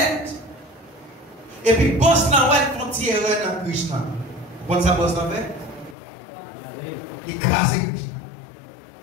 Et puis boss là ouais font tirer dans Krishna. Vous comprenez ça boss là fait? Il crase Krishna.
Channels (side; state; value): right; drops out; at 6.0 s